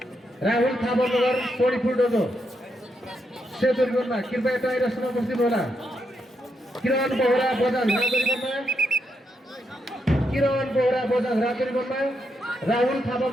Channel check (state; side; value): normal; both; correlation 0.81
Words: सोनीपुर डोजो सेतुरीमा कृपया टाइरसमा बस्दिनु होला। किरण बोहरा बजाङ राजुली बन्न राहुल थापा